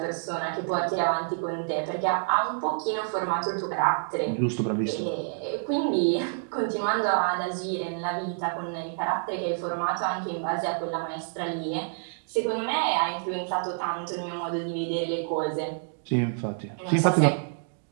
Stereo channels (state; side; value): silent; left; digital silence